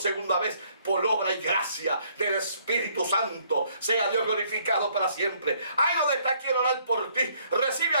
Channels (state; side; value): inverted; both; correlation -0.65